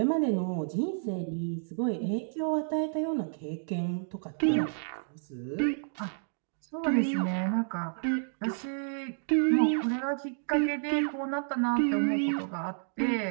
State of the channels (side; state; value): left; silent; digital silence